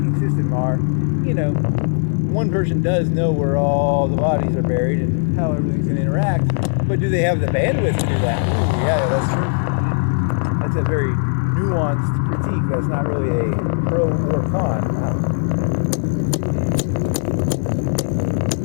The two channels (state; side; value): silent; right; digital silence